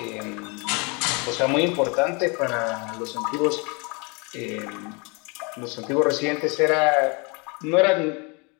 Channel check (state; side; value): quieter; right; 31.0 dB